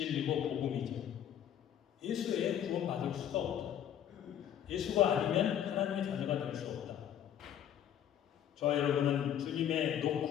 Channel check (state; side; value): quieter; right; 10.0 dB